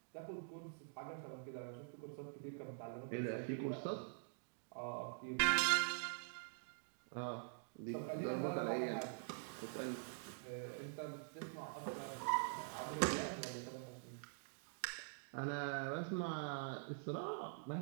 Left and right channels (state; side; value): silent; left; digital silence